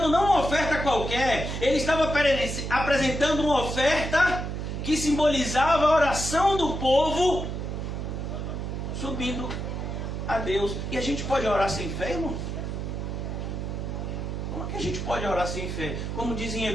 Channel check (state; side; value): noise; right; hum, 4 dB below the sound